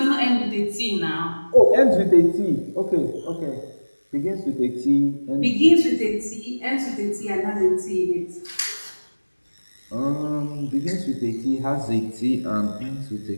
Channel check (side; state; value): both; inverted; correlation -1.00